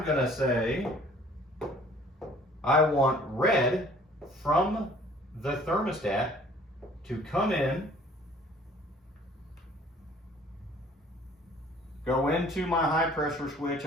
gonna say I want red from the thermostat to come in, go into my high pressure switch,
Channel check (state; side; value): normal; both; correlation 0.54